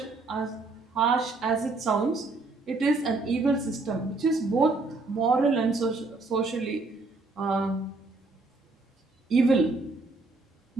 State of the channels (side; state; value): left; quieter; 3.5 dB